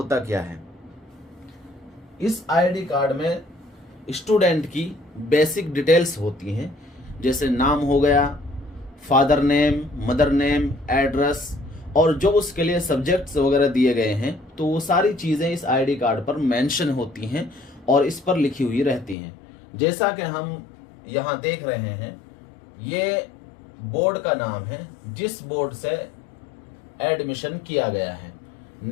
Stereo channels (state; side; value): drops out; right; at 19.2 s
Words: क्या है, इस आईडी कार्ड में स्टूडेंट की बेसिक डिटेल्स होती हैं, जैसे नाम हो गया, father name, mother name, address और जो उसके लिए सब्जेक्ट्स वगैरह दिए गए हैं, तो वो सारी चीज़ें इस आईडी कार्ड पर मेंशन होती हैं और इस पर लिखी हुई रहती हैं। जैसा कि हम यहाँ देख रहे हैं, ये बोर्ड का नाम है जिस बोर्ड से एडमिशन किया गया है,